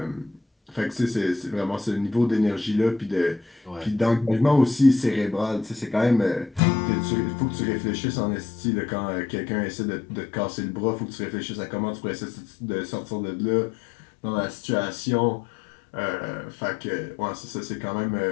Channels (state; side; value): drops out; right; at 6.6 s